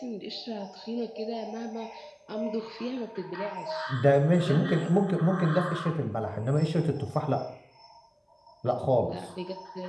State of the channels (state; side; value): identical; both; correlation 1.00